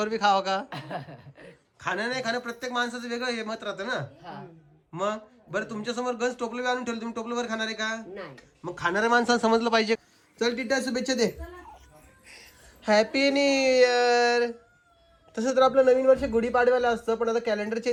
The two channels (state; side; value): identical; both; correlation 1.00